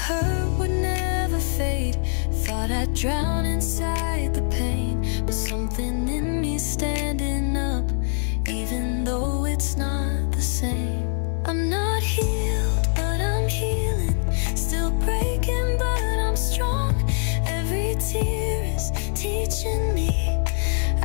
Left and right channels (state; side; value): silent; right; digital silence